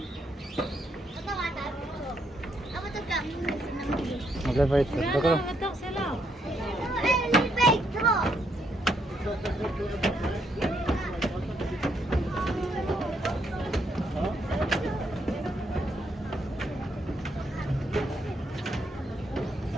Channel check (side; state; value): both; normal; correlation 0.75